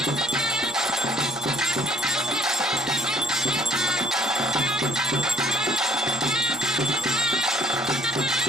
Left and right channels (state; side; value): normal; both; correlation 0.60